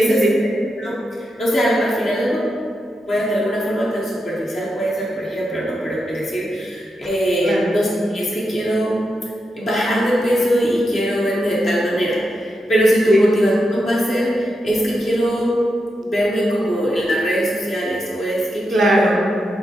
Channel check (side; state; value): both; normal; correlation 0.86